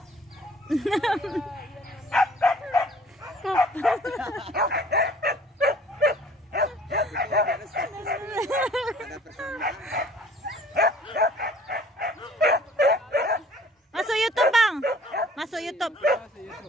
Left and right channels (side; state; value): both; normal; correlation 0.53